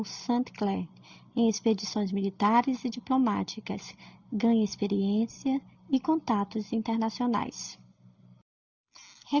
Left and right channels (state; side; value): identical; both; correlation 1.00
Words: St. Clair em expedições militares e diplomáticas. Ganha experiência e contatos internacionais.